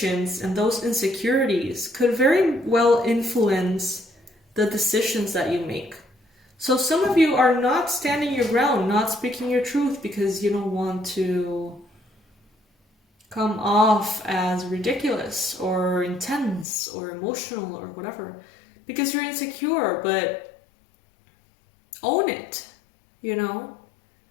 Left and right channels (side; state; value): right; drops out; at 16.7 s